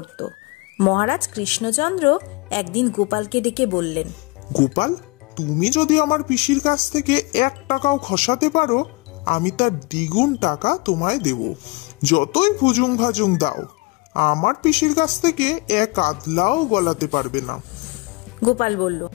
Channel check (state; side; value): quieter; right; 25.7 dB